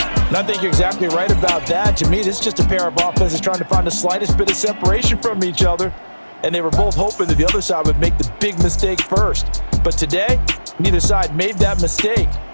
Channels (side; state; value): both; inverted; correlation -1.00